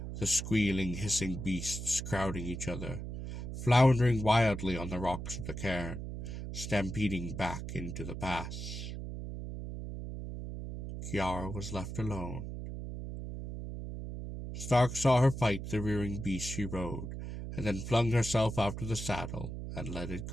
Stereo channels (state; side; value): noise; right; hum, 7 dB below the sound